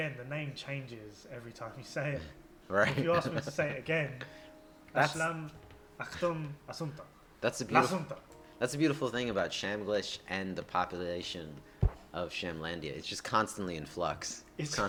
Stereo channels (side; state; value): both; identical; correlation 1.00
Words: the name changes every time you say it. Right. If you ask me to say it again, That's- Ashlam Natsuo. That's a beautiful thing about Shamglish and the population of Shamlandia. It's just constantly in flux. It's